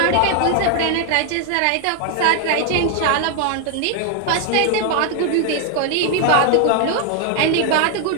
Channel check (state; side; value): different; both; correlation 0.00